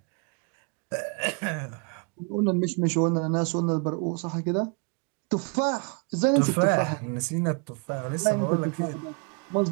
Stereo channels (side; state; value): left; quieter; 35.4 dB